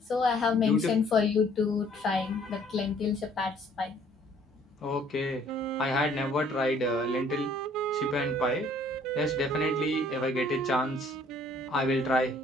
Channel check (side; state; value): both; normal; correlation 0.59